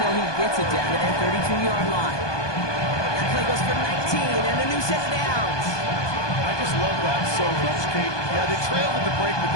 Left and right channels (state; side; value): late; right; 1.2 ms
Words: he gets it down to that 32-yard line. That play goes for 19 and a new set of downs. I just love that so much, Kate. Yeah, they trail at the break, but